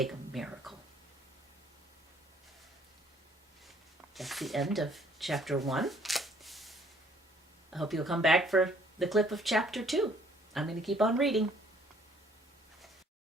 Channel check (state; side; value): normal; both; correlation 0.61